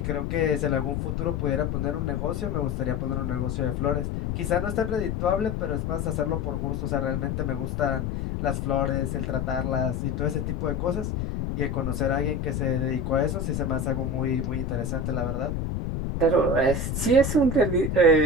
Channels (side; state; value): left; noise; rumble, 2 dB below the sound